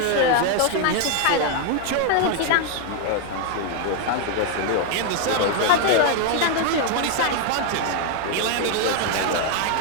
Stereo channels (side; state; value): both; different; correlation 0.00